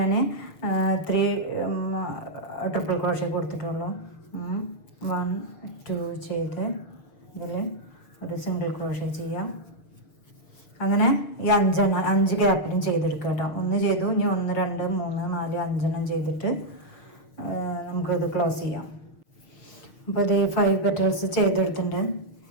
3 ട്രിപ്പിൾ ക്രോഷ്യ കൊടുത്തിട്ടുള്ളൂ. 1 2 ചെയ്ത് ഇതിൽ ഒരു സിംഗിൾ ക്രോഷ്യ ചെയ്യാം. അങ്ങനെ ഈ 5 ഗ്യാപ്പിലും ചെയ്തെടുക്കുക കേട്ടോ. 1 ചെയ്തു, ഇനി 1 2 3 4 5 ചെയ്തിട്ട് നമുക്കത് ക്ലോസ് ചെയ്യാം. അപ്പോൾ ഇത് 5 പെറ്റൽസ് ചെയ്തെടുത്തിട്ടുണ്ട്.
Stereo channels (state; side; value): late; right; 6.6 ms